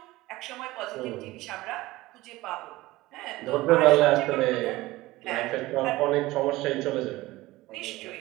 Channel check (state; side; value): quieter; left; 18.7 dB